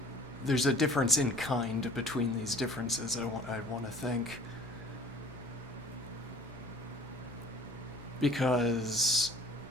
there's a difference in kind between these differences, I want to think. Because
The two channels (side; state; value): both; normal; correlation 0.50